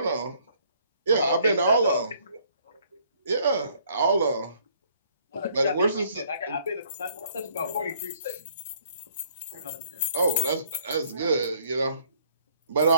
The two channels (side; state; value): both; inverted; correlation -0.63